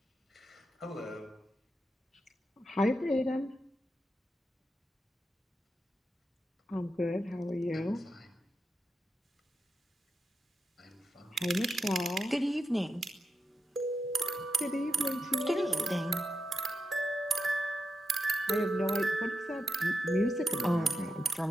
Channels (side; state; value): both; normal; correlation 0.87